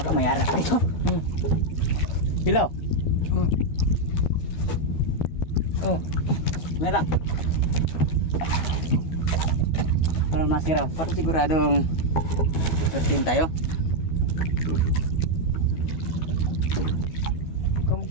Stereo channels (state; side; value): late; right; 12 ms